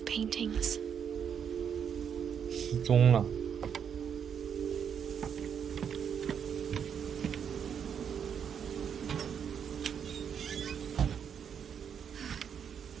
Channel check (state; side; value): quieter; left; 7.8 dB